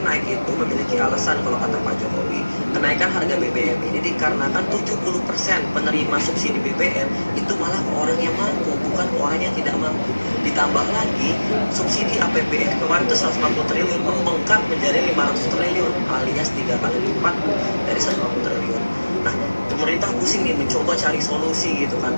naik itu memiliki alasan kalau kata Pak Jokowi. Kenaikan harga BBM ini dikarenakan 70% penerima subsidi BBM itu malah ke orang yang mampu, bukan ke orang yang tidak mampu. Ditambah lagi, subsidi APBN kemarin itu 150 triliun membengkak menjadi 500 triliun, alias 3 kali lipat dari 150 triliun. Nah, pemerintah pusing nih mencoba cari solusi gitu kan,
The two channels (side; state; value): both; inverted; correlation -1.00